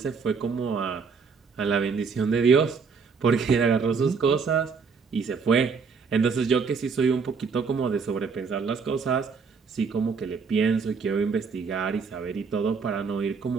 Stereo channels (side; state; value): left; quieter; 5.3 dB